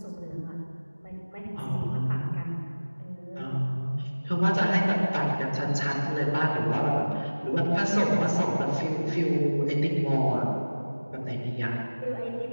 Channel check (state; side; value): inverted; both; correlation -1.00